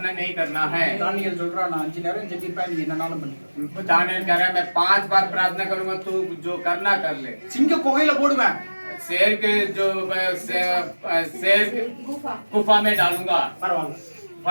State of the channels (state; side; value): inverted; both; correlation -1.00